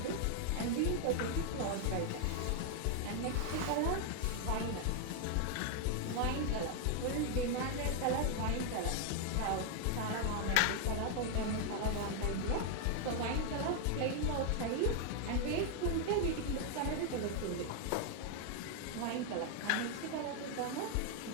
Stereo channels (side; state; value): both; different; correlation 0.00